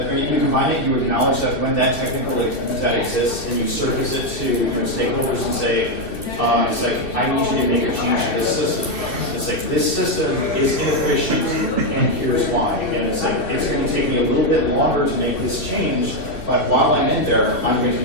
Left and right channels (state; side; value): late; right; 2.7 ms